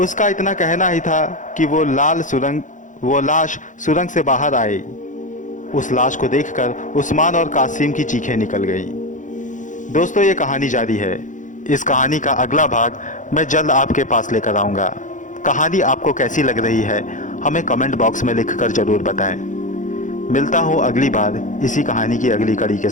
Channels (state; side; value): late; right; 0.37 ms